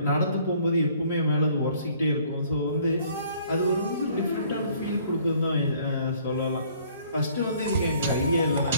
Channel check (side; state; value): both; inverted; correlation -0.59